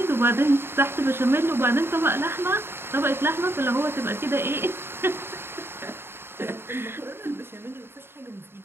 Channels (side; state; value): left; late; 0.11 ms